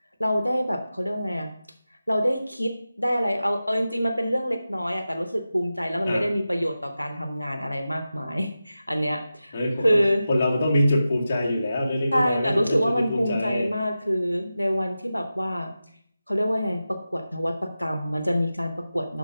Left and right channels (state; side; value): inverted; both; correlation -0.93